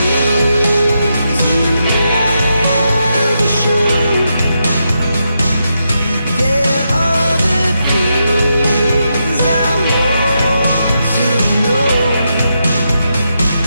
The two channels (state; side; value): inverted; both; correlation -0.84